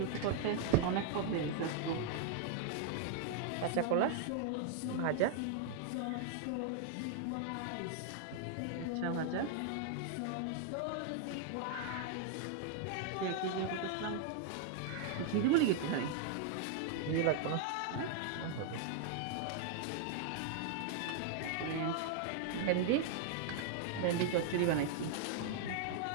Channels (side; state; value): both; different; correlation 0.00